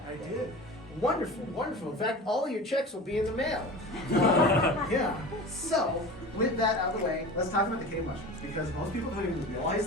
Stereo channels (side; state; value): both; normal; correlation 0.35